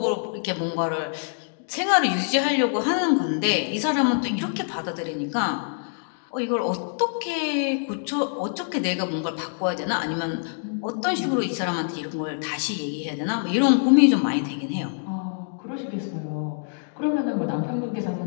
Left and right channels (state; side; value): silent; right; digital silence